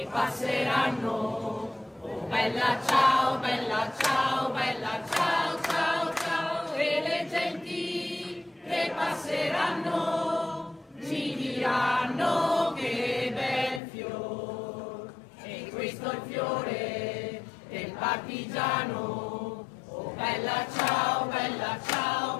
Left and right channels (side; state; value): right; drops out; at 13.8 s